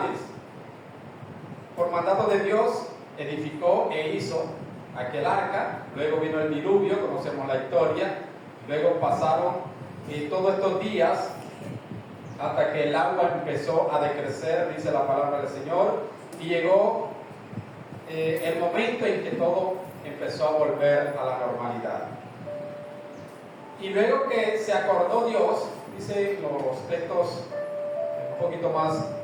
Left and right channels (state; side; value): identical; both; correlation 1.00